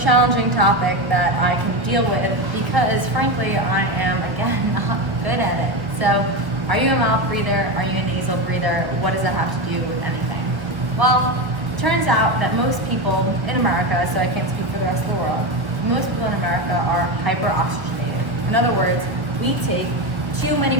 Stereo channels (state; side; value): late; left; 1.0 ms